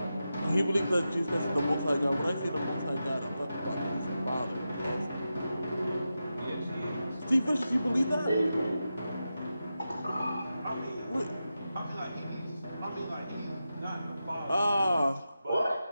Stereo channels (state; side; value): inverted; both; correlation -0.90